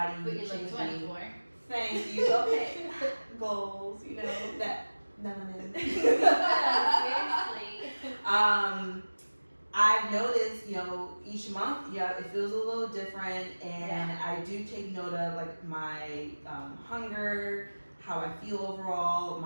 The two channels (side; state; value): both; inverted; correlation -1.00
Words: But you changing. look 24. Thank you. Okay, goals. You know that melanin. Seriously. I've noticed, you know, each month, yeah, it feels a little different, and Yeah. I do take note of like my hunger, how I feel overall,